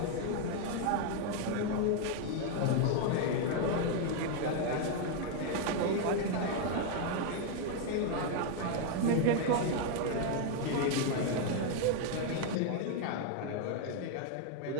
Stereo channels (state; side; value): different; both; correlation 0.01